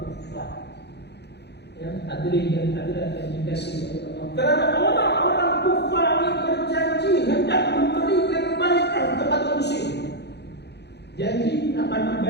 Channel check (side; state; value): right; late; 0.49 ms